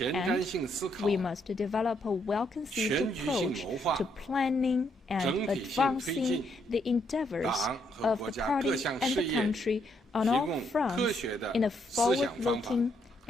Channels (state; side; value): normal; both; correlation 0.74